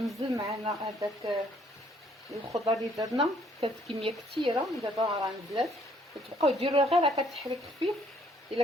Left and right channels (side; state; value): both; normal; correlation 0.64